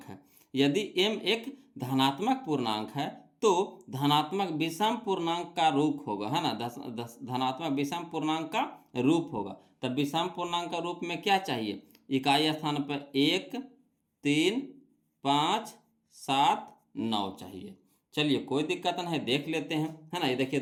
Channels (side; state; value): both; identical; correlation 1.00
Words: है, यदि m एक धनात्मक पूर्णांक है तो धनात्मक विषम पूर्णांक का रूप होगा, है ना, धनात्मक विषम पूर्णांक का रूप होगा। तब विषम पूर्णांक का रूप में क्या चाहिए, इकाई स्थान पर 1, 3, 5, 7, 9 चाहिए। चलिए कोई दिक्कत नहीं है, देख लेते हैं, है ना। ये देखिए